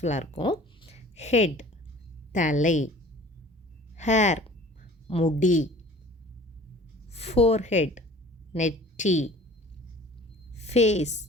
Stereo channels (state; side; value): normal; both; correlation 0.47